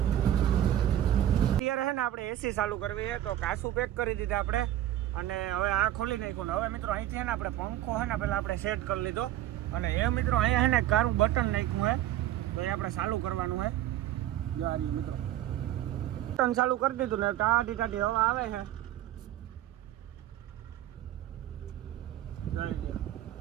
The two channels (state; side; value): quieter; left; 12.8 dB